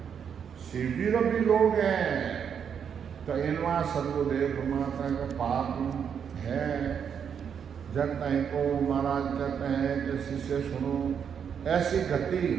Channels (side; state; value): left; quieter; 7.6 dB